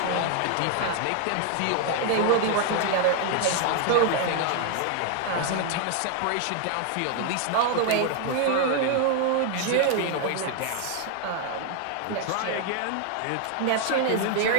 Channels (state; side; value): different; both; correlation 0.00